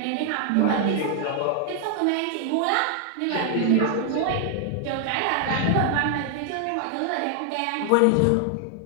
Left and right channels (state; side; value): different; both; correlation 0.00